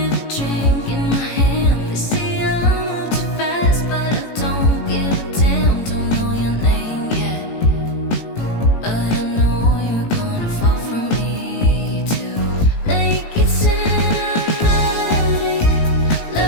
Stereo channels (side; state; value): right; late; 18 ms